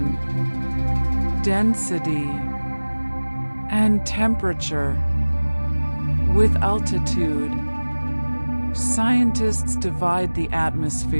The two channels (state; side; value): inverted; both; correlation -1.00